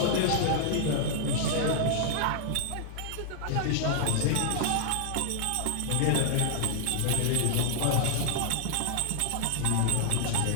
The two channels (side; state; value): both; different; correlation 0.00